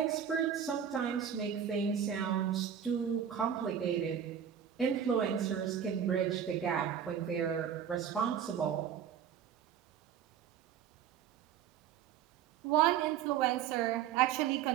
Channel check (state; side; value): quieter; left; 8.8 dB